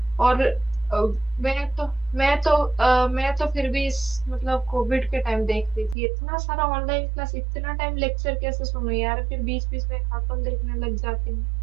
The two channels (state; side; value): drops out; left; at 6.0 s